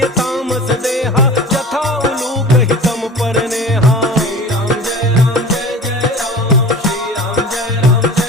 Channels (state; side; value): normal; both; correlation 0.39